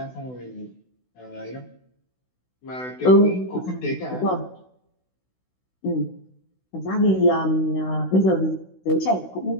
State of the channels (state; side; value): late; right; 16 ms